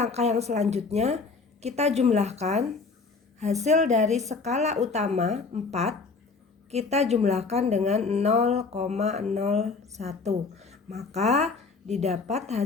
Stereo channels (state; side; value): quieter; right; 4.4 dB